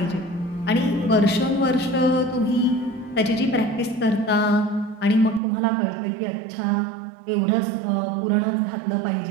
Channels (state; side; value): drops out; left; at 5.4 s